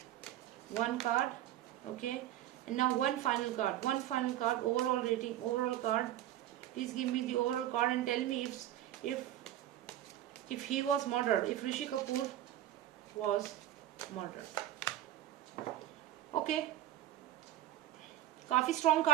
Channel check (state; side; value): quieter; left; 13.0 dB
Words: 1 card, okay. And now 1 final card. Overall rating, overall card. Please give me the overall card and tell me if he was murdered, if Rishi Kapoor was murdered. Okay. काफी strong